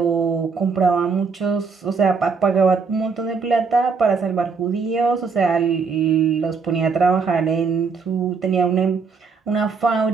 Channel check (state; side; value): quieter; left; 5.1 dB